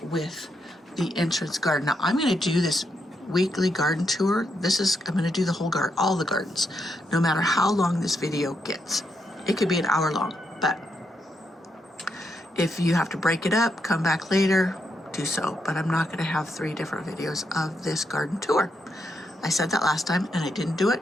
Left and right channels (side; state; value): both; normal; correlation 0.80